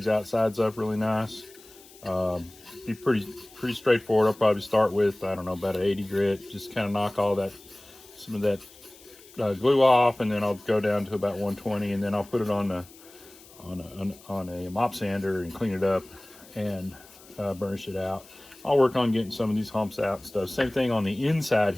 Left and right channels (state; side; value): noise; left; hiss, 23 dB below the sound